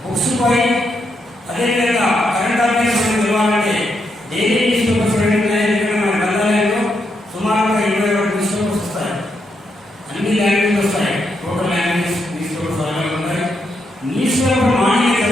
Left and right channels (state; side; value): normal; both; correlation 0.80